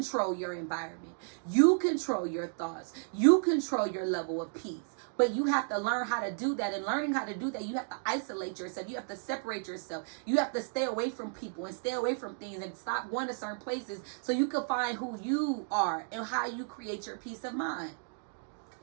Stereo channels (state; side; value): silent; left; digital silence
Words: your environment. You control your thoughts. You control your level of peace. But you have to learn how to do that. And learning how to do that, you have to isolate yourself. You have to separate yourself. You have to stay away from people and stay away from things and stop going to certain places so you can find who you are and how you create your peace of mind.